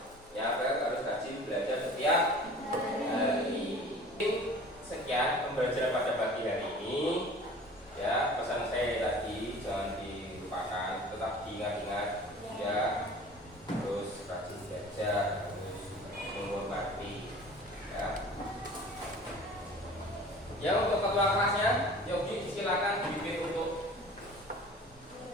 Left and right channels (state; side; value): normal; both; correlation 0.44